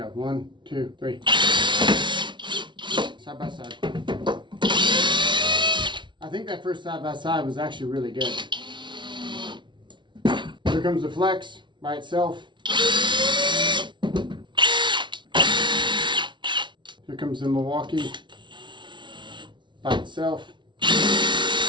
1, 2, 3. Side by side. I think that first side by side was actually really good. Here comes the flex by itself. Here comes the Milwaukee by itself.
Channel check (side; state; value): left; late; 0.23 ms